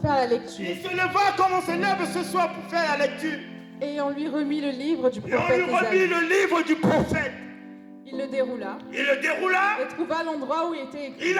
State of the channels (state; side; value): identical; both; correlation 1.00